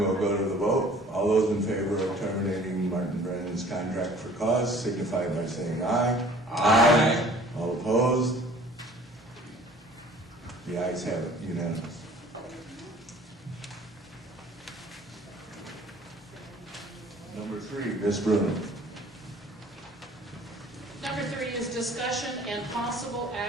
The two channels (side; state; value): both; normal; correlation 0.50